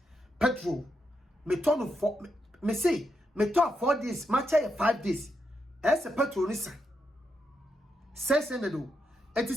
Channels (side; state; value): both; normal; correlation 0.83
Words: petrol me to no 4 me say me to 4 days matcha 5 days ese petrol ni sa 600 o enti